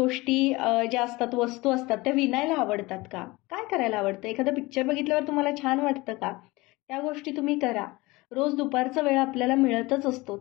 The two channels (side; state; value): right; quieter; 22.0 dB